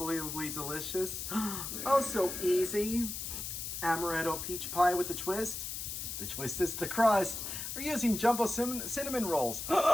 delicious, oh so easy, Amaretto Peach Pie with the twist. The twist is the crust. We're using jumbo cinnamon rolls.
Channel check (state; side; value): noise; left; hiss, 5 dB below the sound